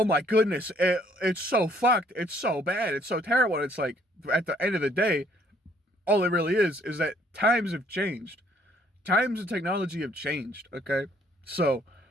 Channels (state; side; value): normal; both; correlation 0.64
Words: my goodness, it's so fucked, it's so bad, it's so terrible. And it's like, at the end of the day, all it really is that times have changed. Times and technology have changed, okay? So,